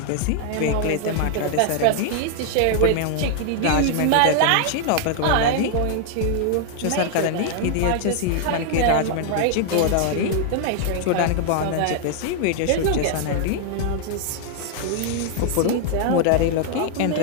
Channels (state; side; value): different; both; correlation 0.00